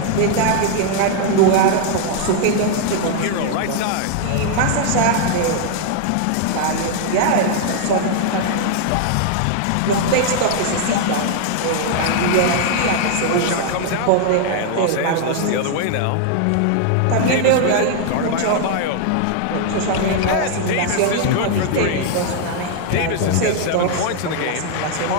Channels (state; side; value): different; both; correlation 0.00